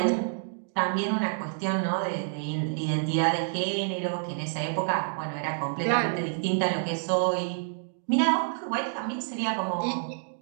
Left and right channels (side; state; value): left; silent; digital silence